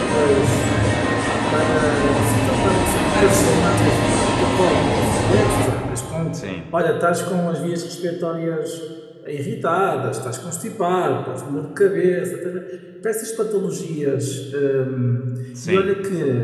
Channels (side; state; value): both; identical; correlation 1.00